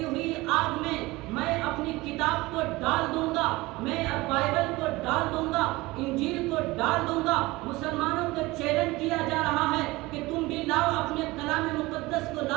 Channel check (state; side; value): quieter; left; 20.8 dB